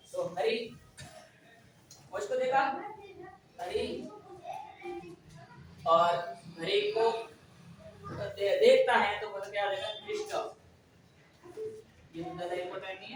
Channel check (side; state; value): both; identical; correlation 1.00